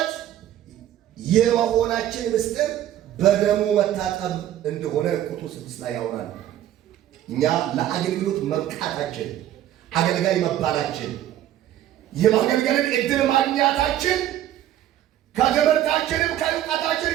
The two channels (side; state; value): left; quieter; 12.2 dB